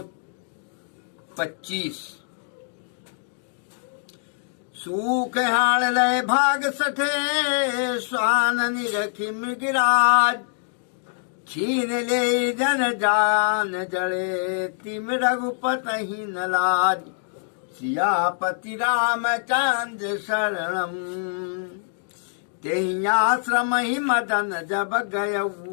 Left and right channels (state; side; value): silent; right; digital silence